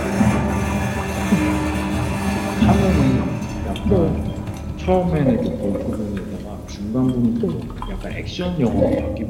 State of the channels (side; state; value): both; identical; correlation 1.00